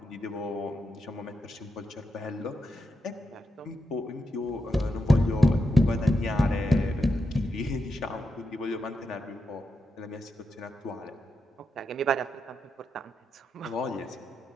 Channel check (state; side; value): normal; both; correlation 0.85